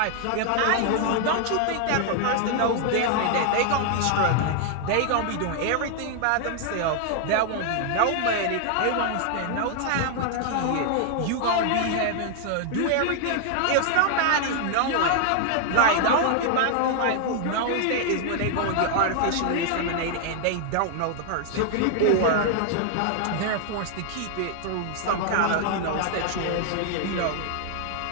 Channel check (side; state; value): both; different; correlation 0.00